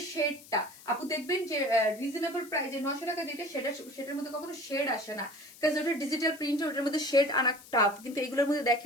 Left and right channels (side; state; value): left; noise; hiss, 20 dB below the sound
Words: শেডটা আপু দেখবেন যে রিজনেবল প্রাইসে 900 টাকা যেটা, সেটার মধ্যে কখনো শেড আসে না, কারণ ওটা ডিজিটাল প্রিন্ট, ওটার মধ্যে শেড আনা টাফ। কিন্তু এগুলোর মধ্যে